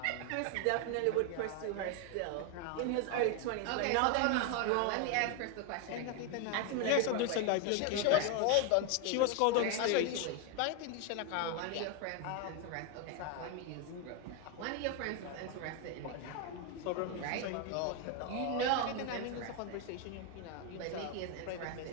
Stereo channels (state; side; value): different; both; correlation 0.01